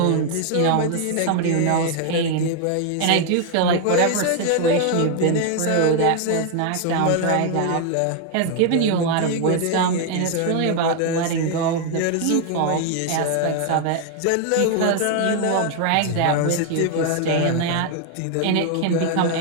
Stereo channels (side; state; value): both; different; correlation 0.00